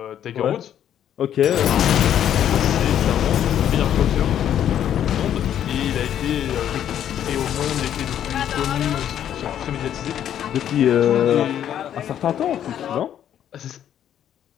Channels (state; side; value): quieter; right; 10.2 dB